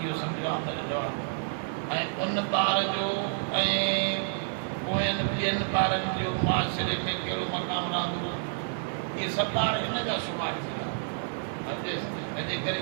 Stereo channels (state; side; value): silent; left; 58 dB below the other